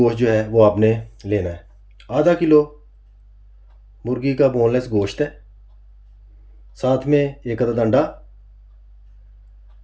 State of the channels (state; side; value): identical; both; correlation 1.00